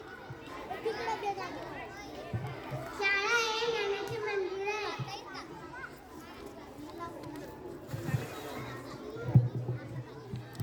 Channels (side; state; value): both; identical; correlation 1.00